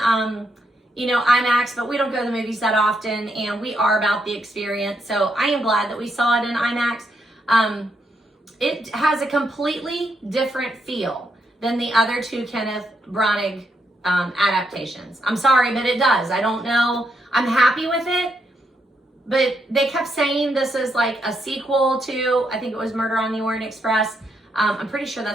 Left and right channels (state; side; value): normal; both; correlation 0.79